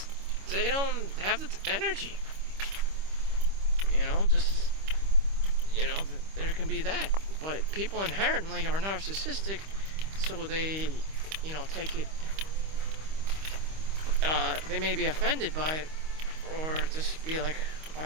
they don't have the energy. There can be that. But people inherently are narcissistic, so they, take it, they may be offended by it, or just be like,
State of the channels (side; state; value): left; late; 25 ms